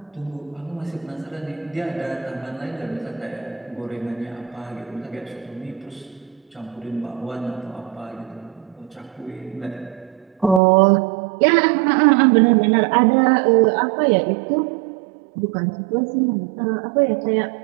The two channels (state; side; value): drops out; left; at 10.6 s